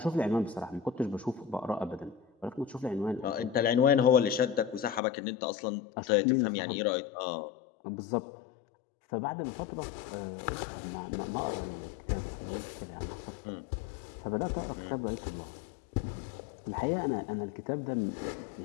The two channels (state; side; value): drops out; right; at 5.0 s